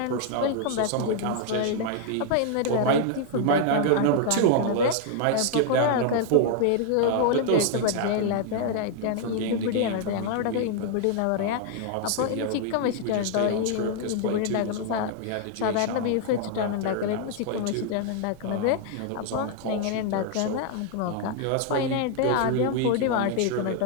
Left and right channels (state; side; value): different; both; correlation 0.00